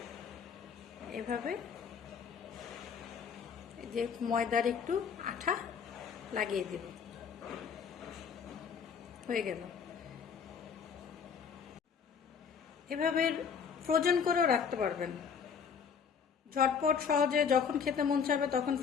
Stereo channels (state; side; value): quieter; right; 6.7 dB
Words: এভাবে যে ময়দার একটু আঠা লাগিয়ে দিব। হয়ে গেল। এভাবে ফ্রোজেন করেও রাখতে পারবেন। ঝটপট সহজে যখন খেতে মন চাবে তখন